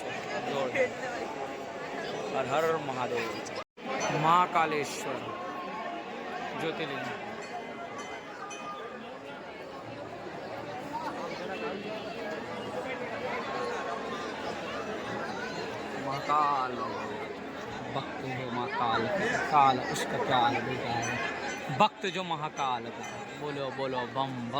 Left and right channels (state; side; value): identical; both; correlation 1.00